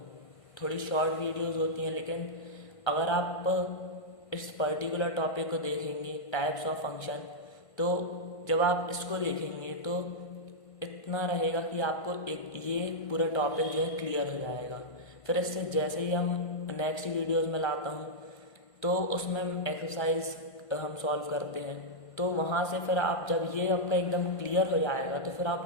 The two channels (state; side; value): late; right; 1.5 ms